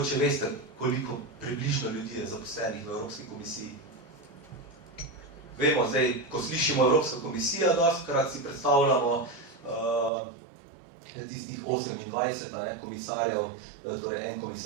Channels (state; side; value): drops out; left; at 10.1 s